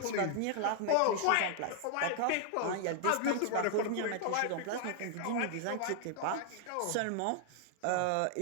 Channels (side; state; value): both; different; correlation 0.00